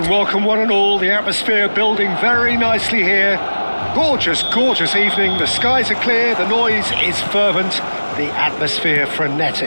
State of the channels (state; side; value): inverted; both; correlation -1.00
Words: welcome one and all. The atmosphere building very nicely here. Gorgeous, gorgeous evening. The skies are clear, the noise is fervent, the atmosphere